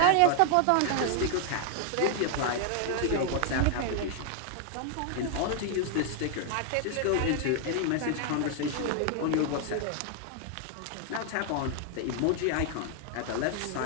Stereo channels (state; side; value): different; both; correlation 0.00